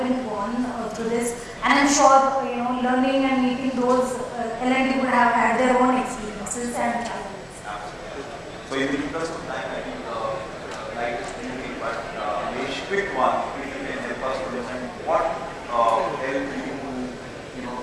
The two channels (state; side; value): identical; both; correlation 1.00